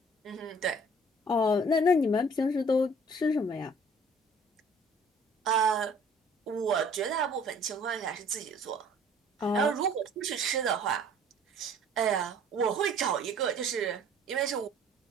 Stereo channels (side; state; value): both; normal; correlation 0.53